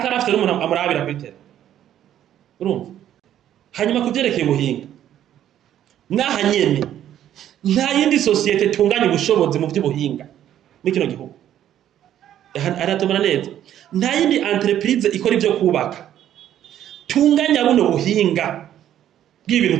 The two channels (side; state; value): left; quieter; 11.2 dB